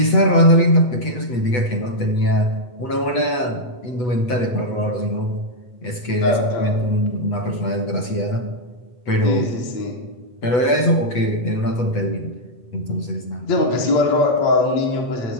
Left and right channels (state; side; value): late; right; 8.1 ms